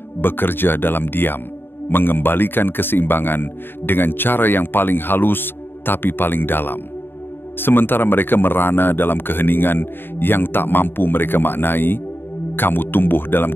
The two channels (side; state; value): right; late; 0.10 ms